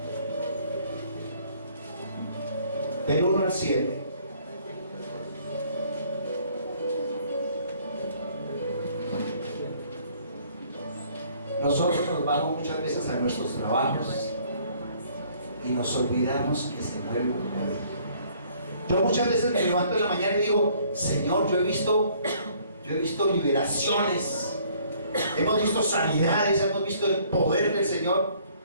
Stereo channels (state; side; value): inverted; both; correlation -0.60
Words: Del 1 al 7. Nosotros nos vamos muchas veces a nuestros trabajos y nos olvidamos que se mueve un poder. Yo muchas veces me levanto en la mañana y digo: Señor, yo he visto liberaciones, hemos visto sanidades, hemos visto el poder del Señor,